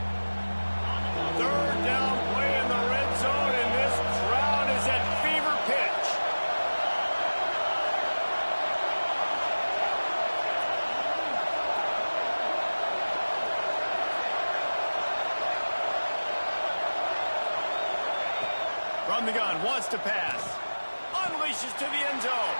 3rd down play in the red zone, and this crowd is at fever pitch. From the gun, wants to pass. Unleashes to the end zone.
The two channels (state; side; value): inverted; both; correlation -1.00